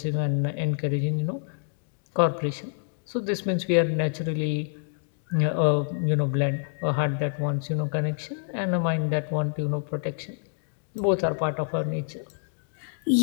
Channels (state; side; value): silent; right; digital silence